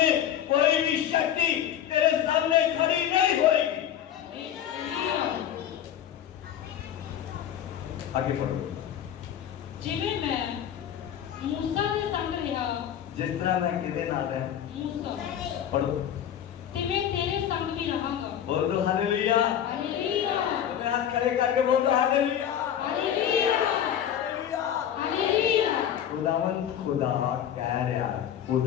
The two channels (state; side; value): quieter; right; 10.0 dB